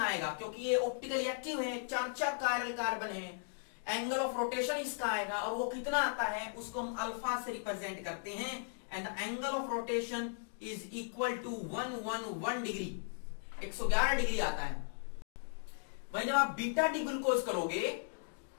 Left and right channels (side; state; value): right; silent; digital silence